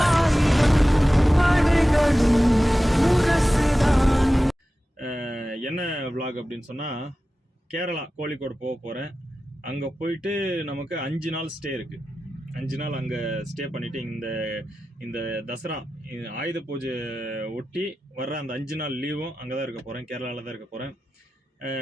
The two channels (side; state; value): both; normal; correlation 0.94